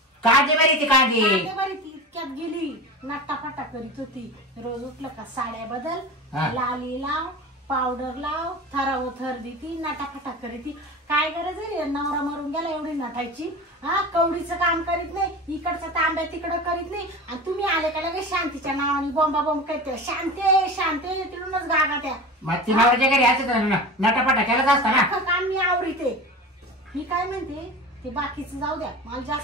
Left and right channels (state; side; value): normal; both; correlation 0.31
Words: कांदे बरी ती कांदे बरी ती इतक्यात गेली नाटाफाटा करीत होती. रोज उठलं का साड्या बदल लाली लाव पावडर लाव थराव थर देती नाटाफाटा करीती. काय गरज आहे नवरा मरून गेला एवढी नटायची. हा कवडीचं काम करीत नाही इकडचा तांब्या तिकडं करीत नाही आणि तुम्ही आले का लगेच शांतीच्या नावाने बोंबा बोंब करते. शांते शांते तिकडूनच गागा त्या मग ती नवऱ्याच्या घरी असं नटापटा केलाच असता ना काम मी आवडीते. मी काय म्हणते ते बाकीचं जाऊ द्या मला